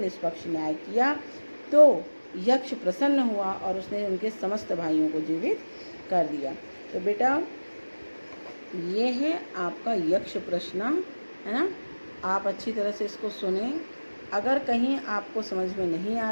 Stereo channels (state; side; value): inverted; both; correlation -1.00